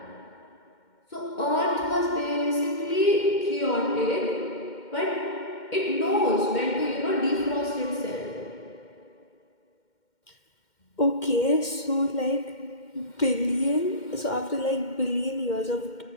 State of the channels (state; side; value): late; right; 2.1 ms